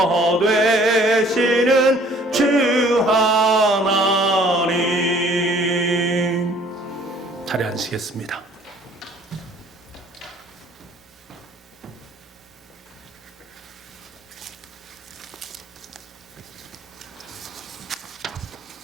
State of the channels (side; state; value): both; normal; correlation 0.56